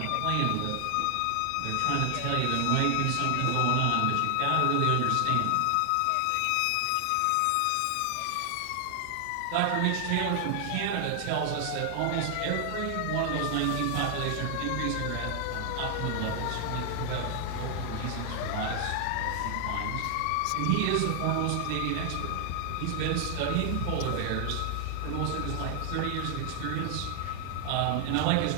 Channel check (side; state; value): both; different; correlation 0.00